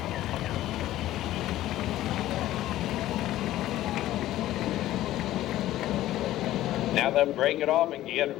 Now they'll break it off and get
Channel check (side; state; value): right; quieter; 14.5 dB